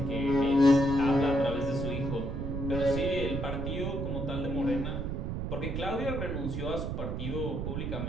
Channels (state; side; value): noise; right; rumble, 3 dB below the sound